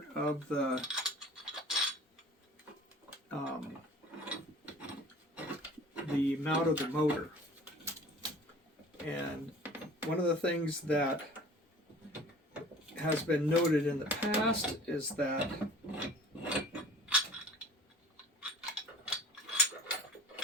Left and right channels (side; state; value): both; normal; correlation 0.46